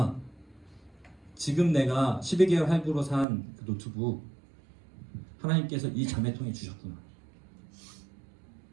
지금 내가 12개월 할부로 산 그 노트북 하나님께서 이 자매통에 주셨구나.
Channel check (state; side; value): drops out; left; at 3.2 s